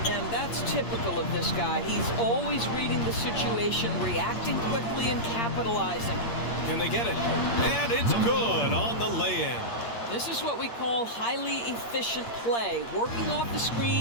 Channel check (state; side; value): late; right; 8.6 ms